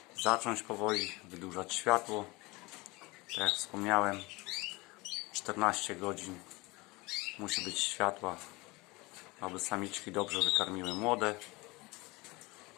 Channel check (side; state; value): right; quieter; 23.6 dB